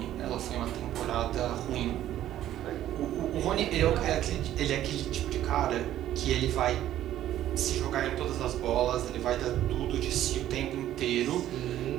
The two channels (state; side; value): quieter; left; 12.5 dB